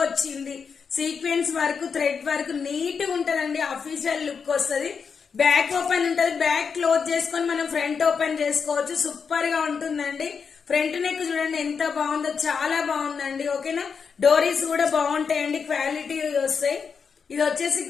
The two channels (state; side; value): quieter; right; 6.0 dB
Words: వచ్చింది, sequence work, thread work neat గా ఉంటదండి. అఫీషియల్ లుక్ వస్తుంది. బ్యాక్ ఓపెన్ ఉంటది, బ్యాక్ క్లోజ్ చేసుకొని మనం ఫ్రంట్ ఓపెన్ చేసుకోవచ్చు. సూపర్ గా ఉంటుందండి. ఫ్రంట్ నెక్ చూడండి ఎంత బాగుందో, చాలా బాగుందండి. ఓకేనా, డోరీస్ కూడా బాగుంటాయండి, క్వాలిటీ వస్తాయి. ఇది వచ్చేసి